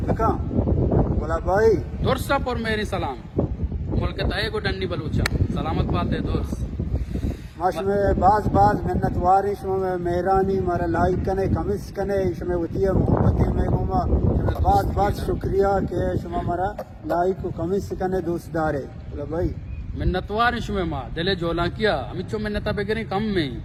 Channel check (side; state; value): both; identical; correlation 1.00